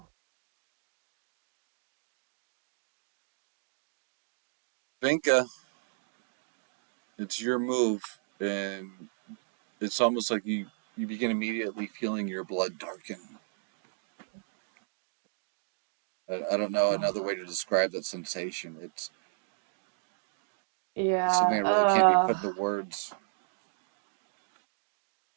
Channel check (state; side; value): silent; left; digital silence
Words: Vinka, it's your move, and it's almost like you begin immediately feeling your blood darken. I don't know another way to describe that sensation. It's Yeah. something that really can't be put into words.